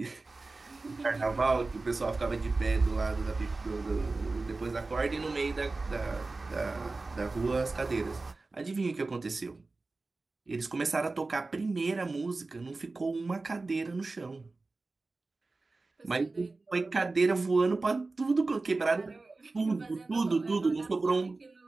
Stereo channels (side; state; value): left; quieter; 3.5 dB